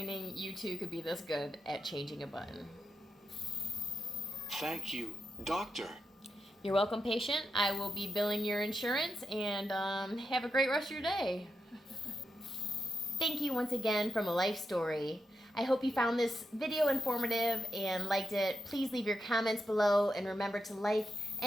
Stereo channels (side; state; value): both; normal; correlation 0.86